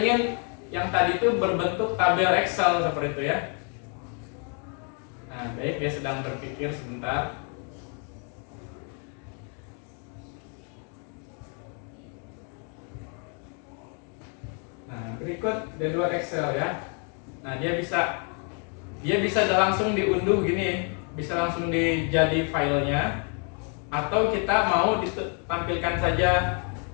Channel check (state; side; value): quieter; right; 39.7 dB